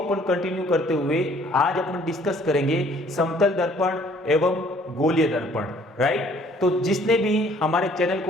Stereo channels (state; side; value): normal; both; correlation 0.59